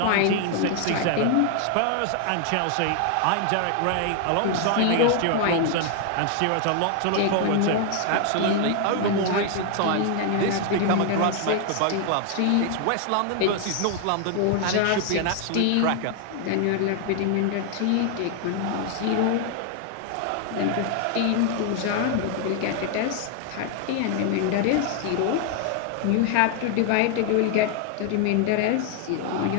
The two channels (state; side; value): different; both; correlation 0.00